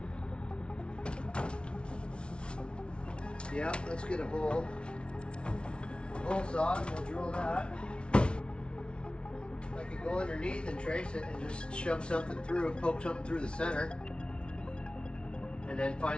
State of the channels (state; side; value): late; right; 0.057 ms